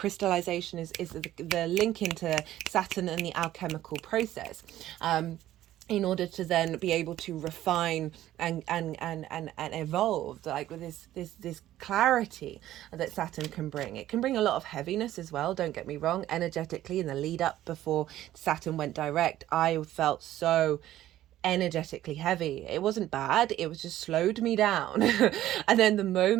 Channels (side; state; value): left; quieter; 13.7 dB